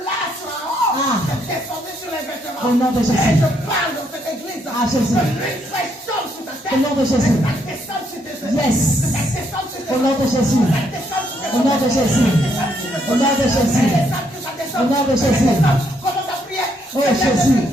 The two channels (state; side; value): normal; both; correlation 0.73